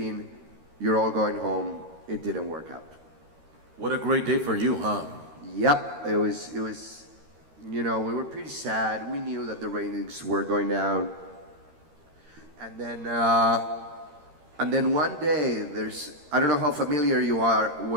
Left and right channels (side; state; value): left; late; 13 ms